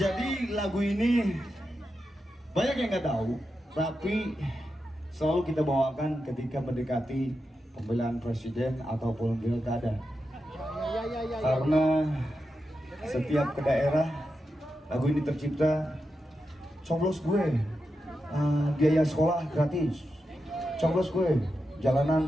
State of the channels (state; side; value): normal; both; correlation 0.88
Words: lagu ini banyak yang nggak tahu, tapi selalu kita bawakan ketika mendekati pemilihan presiden ataupun pilkada. Karena setiap ke daerah lagu ini tercipta, coblos gue, biaya sekolah gratis, coblos gue,